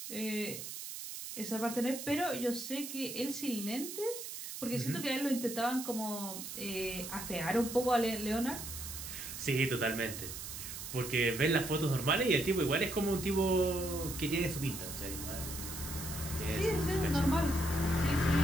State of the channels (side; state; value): right; noise; hiss, 8 dB below the sound